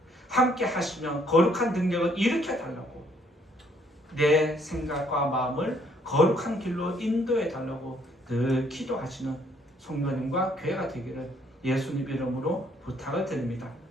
함께 하시면 거룩한 능력을 일으켜 달라고, 내 생각과 마음을 거룩한 길로 인도해 달라고 늘 기도하시는 성도님과 교회가 되기를 예수님 이름으로 부탁을 드립니다.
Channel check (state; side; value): normal; both; correlation 0.66